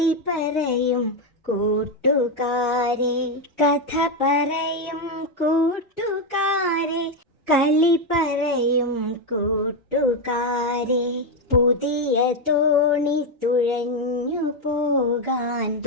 പറയും കൂട്ടുകാരെ. കഥ പറയും കൂട്ടുകാരെ, കളി പറയും കൂട്ടുകാരെ. പുതിയ തോണി തുഴഞ്ഞു പോകാൻ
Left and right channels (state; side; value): normal; both; correlation 0.06